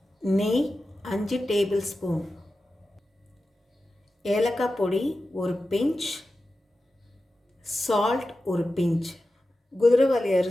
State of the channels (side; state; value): both; normal; correlation 0.93